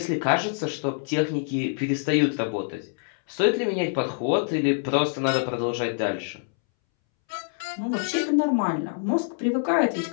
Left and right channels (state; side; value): silent; right; 61 dB below the other